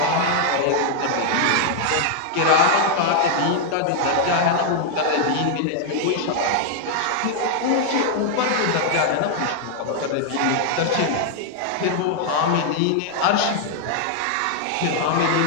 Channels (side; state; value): both; different; correlation 0.00